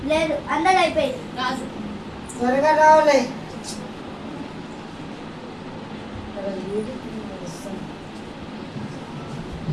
లేదు అందరూ అయిపోయింది. రాజు త్వరగా రావాలి.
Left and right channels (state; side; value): identical; both; correlation 1.00